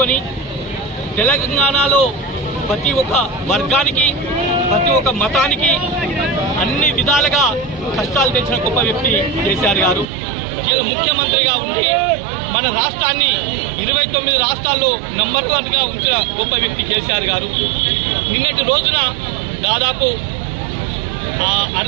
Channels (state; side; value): drops out; left; at 10.1 s